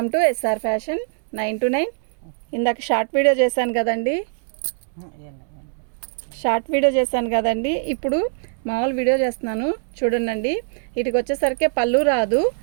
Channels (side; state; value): left; silent; digital silence